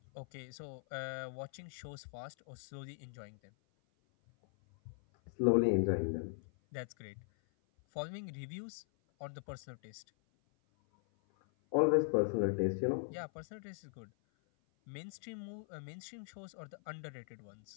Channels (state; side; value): silent; right; 51 dB below the other